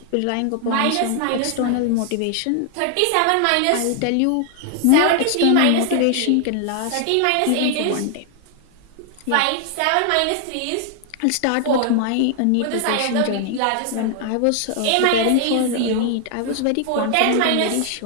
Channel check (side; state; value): both; different; correlation 0.00